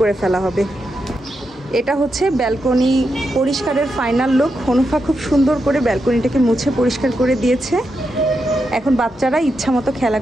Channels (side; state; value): both; normal; correlation 0.85